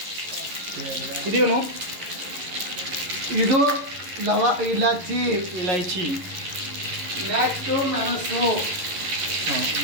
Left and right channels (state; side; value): late; left; 11 ms